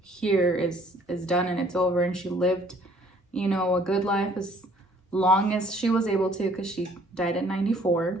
here is done and it's over, and she lived a good life as long as she was able to, because she died at 94.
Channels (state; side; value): normal; both; correlation 0.59